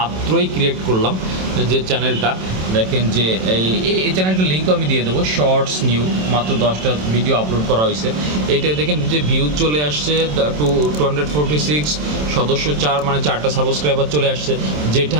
ক্রিয়েট করলাম যে চ্যানেলটা, দেখেন যে এই চ্যানেলটার লিঙ্কও আমি দিয়ে দেবো। শর্টস নিউ, মাত্র 10টা ভিডিও আপলোড করা হয়েছে। এইটাই দেখেন যে ভিউজ চলে আসছে 246, সদস্য 4, মানে 4টা সাবস্ক্রাইবার চলে আসছে। যেটা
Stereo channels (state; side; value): late; left; 27 ms